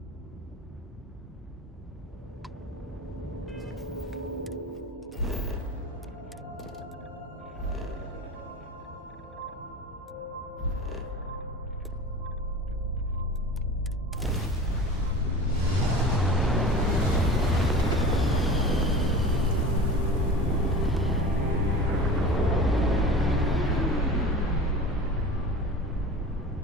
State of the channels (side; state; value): both; normal; correlation 0.34